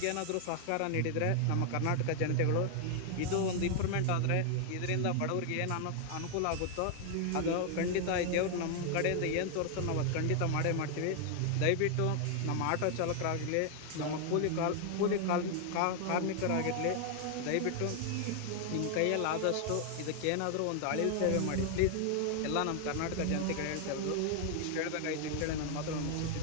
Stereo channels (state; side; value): different; both; correlation 0.00